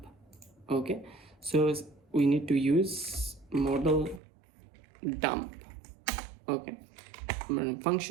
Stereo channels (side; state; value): left; drops out; at 4.2 s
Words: Okay, so we need to use model dump. Okay,